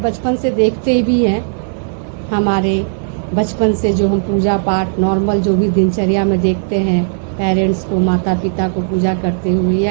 बचपन से देखते भी हैं। हमारे बचपन से जो हम पूजा पाठ नॉर्मल जो भी दिनचर्या में देखते हैं, पेरेंट्स को, माता पिता को पूजा करते हुए,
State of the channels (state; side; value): silent; left; 69 dB below the other